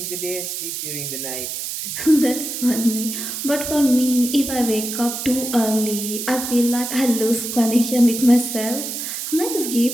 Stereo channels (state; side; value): noise; right; hiss, 5 dB below the sound